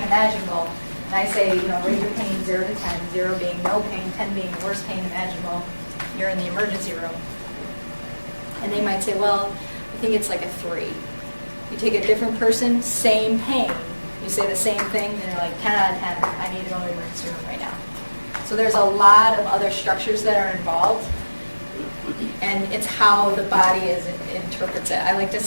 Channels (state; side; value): inverted; both; correlation -1.00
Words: imaginable, and I say, rate your pain 0 to 10, 0 being no pain, 10 being the worst pain imaginable. You're in the emergency room. And they might say, well, I think it's like a 3. You take a different person, same pain. You say the same thing, and they're like 10 out of 10. I need to go to the emergency room right now. So there's a lot of other structures that are involved, and it's how the body interprets it. I like to